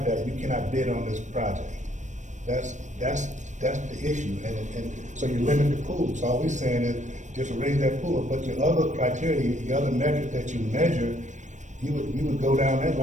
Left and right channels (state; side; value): late; left; 0.35 ms